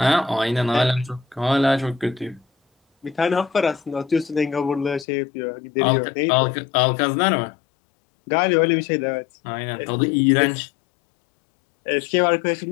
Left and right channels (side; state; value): right; drops out; at 5.1 s